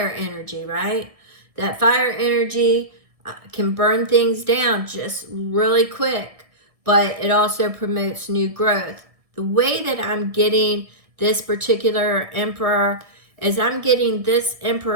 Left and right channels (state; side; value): late; left; 1.6 ms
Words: energy, right? That fire energy can burn things down just really quick, but it also promotes new growth. The way that I'm getting this particular Emperor is I'm getting this